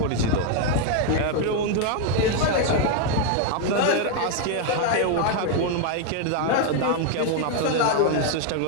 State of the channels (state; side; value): different; both; correlation 0.01